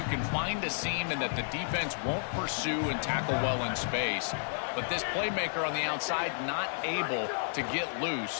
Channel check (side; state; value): right; silent; 57 dB below the other